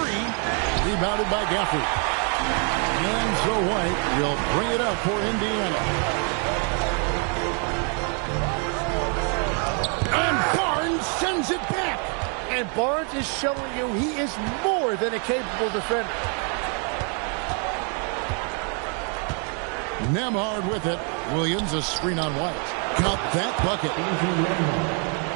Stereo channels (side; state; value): left; quieter; 39.4 dB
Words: 3. Rebounded by Gafford. And so White will bring it up for Indiana. And Barnes sends it back. And Barnes is showing you he is more than a capable defender. Nembhard with it. Williams, a screen on White. Got that bucket.